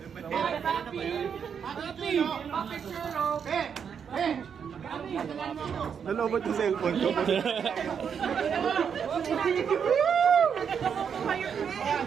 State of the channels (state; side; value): quieter; left; 7.2 dB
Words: Nalobot yung cellphone ko.